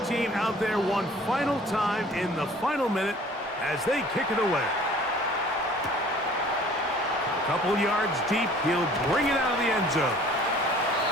team out there one final time in the final minute as they kick it away. A couple yards deep, he'll bring it out of the end zone.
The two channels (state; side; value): normal; both; correlation 0.51